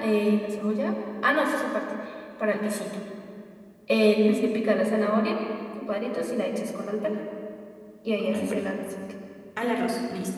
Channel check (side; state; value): both; identical; correlation 1.00